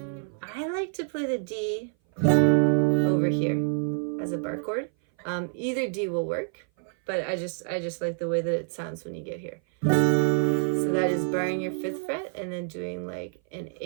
I like to play the D over here as a bar chord. Either D will work, but I just like the way that it sounds when you get here. So that is barring your 5th fret and then doing like an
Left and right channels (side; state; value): left; silent; 57 dB below the other